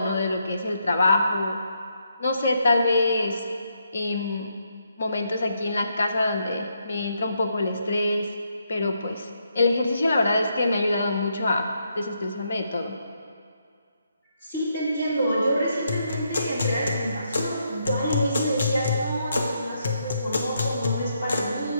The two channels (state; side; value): inverted; both; correlation -0.78